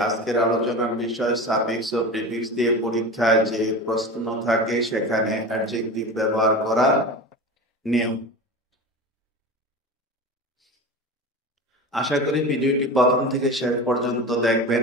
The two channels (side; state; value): both; normal; correlation 0.29